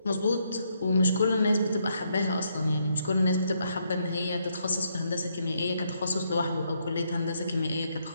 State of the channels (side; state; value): both; inverted; correlation -0.75